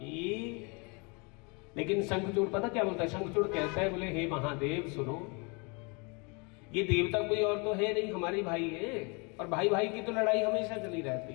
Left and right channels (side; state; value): right; quieter; 31.5 dB